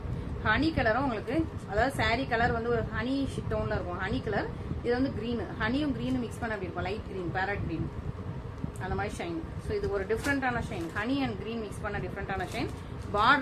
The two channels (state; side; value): identical; both; correlation 1.00